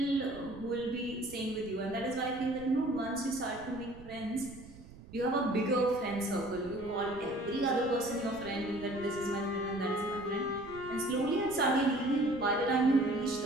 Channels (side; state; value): right; noise; rumble, 18 dB below the sound